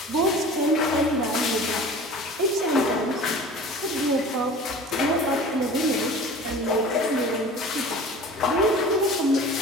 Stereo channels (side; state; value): both; normal; correlation 0.41